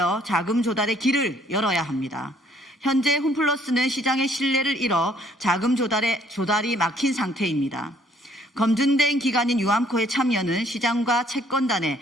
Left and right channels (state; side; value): normal; both; correlation 0.63